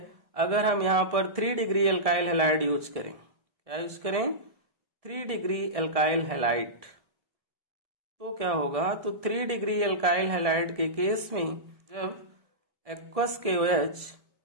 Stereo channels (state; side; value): late; left; 1.7 ms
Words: अगर हम यहां पर 3 डिग्री अल्काइल हैलाइड यूज करें, क्या यूज करें, 3 डिग्री अल्काइल हैलाइड, तो क्या होगा, तो 3 डिग्री अल्काइल हैलाइड के केस में जब एक्वस KOH